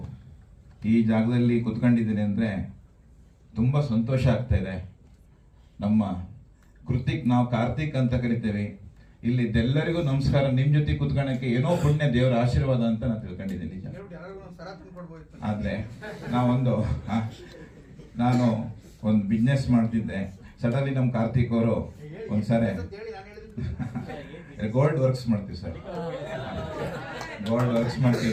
ಈ ಜಾಗದಲ್ಲಿ ಕುತ್ಕೊಂಡಿದ್ದೀನಿ ಅಂದರೆ ತುಂಬ ಸಂತೋಷ ಆಗ್ತಾ ಇದೆ. ನಮ್ಮ ಕೃತಿಕ್, ನಾವು ಕಾರ್ತಿಕ್ ಅಂತ ಕರಿತೇವೆ. ಇಲ್ಲಿದ್ದೆಲ್ಲರಿಗೂ ನಮಸ್ಕಾರ. ನಿಮ್ಮ ಜೊತೆ ಕುತ್ಕೊಳ್ಳೋಕ್ಕೆ ಏನೋ ಪುಣ್ಯ, ದೇವರ ಆಶೀರ್ವಾದ ಅಂತ ನಾನು ತಿಳ್ಕೊಂಡಿದ್ದೀನಿ. ನಿಜ. ಆದರೆ ನಾನು ಒಂದು ಬಿಸ್ನೆಸ್ ಮಾಡ್ತಿದ್ದೆ. ಸಡನ್ಲಿ ನಮ್ಮ ಕಾರ್ತಿಕ್ ಅವರು ಒಂದ್ಸರಿ ಗೋಲ್ಡ್ ವರ್ಕ್ಸ್ ಮಾಡ್ತೀವಿ ಸರ್, ಗೋಲ್ಡ್ ವರ್ಕ್ಸ್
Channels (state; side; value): identical; both; correlation 1.00